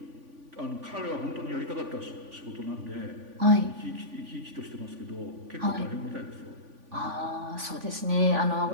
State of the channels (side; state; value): left; late; 3.5 ms